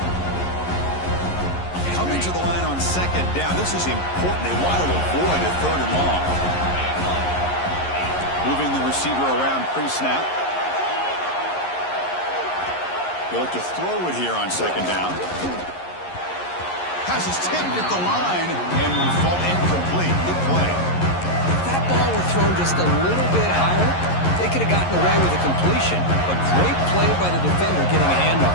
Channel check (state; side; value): late; right; 11 ms